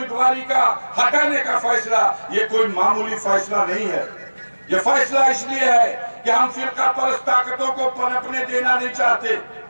का हटाने का फैसला ये कोई मामूली फैसला नहीं है। ये फैसला इसलिए है कि हम फिरका परस्त ताकतों को पनपने देना नहीं चाहते।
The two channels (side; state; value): both; inverted; correlation -1.00